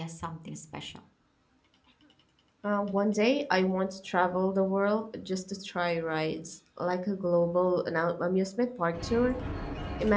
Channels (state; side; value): identical; both; correlation 1.00